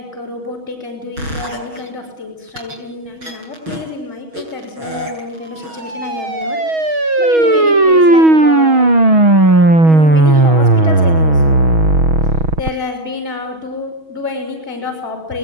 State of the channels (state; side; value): late; left; 6.3 ms